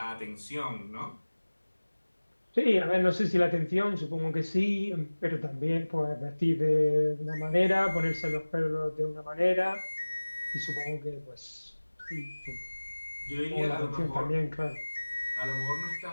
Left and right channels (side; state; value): both; inverted; correlation -1.00